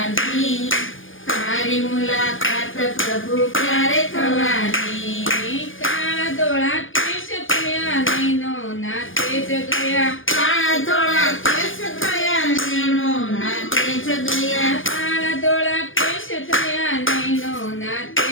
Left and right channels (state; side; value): late; right; 0.58 ms